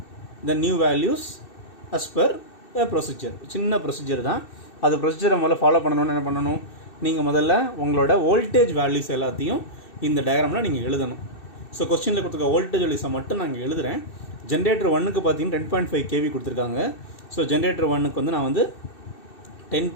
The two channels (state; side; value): late; right; 2.6 ms